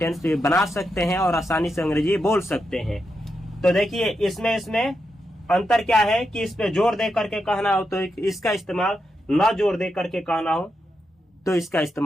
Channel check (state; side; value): normal; both; correlation 0.85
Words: भी बना सकते हैं और आसानी से अंग्रेजी बोल सकते हैं। तो देखिए इसमें अंतर क्या है कि इस पे जोर दे करके कहना हो तो इसका इस्तेमाल, ना जोर दे करके कहना हो तो इसका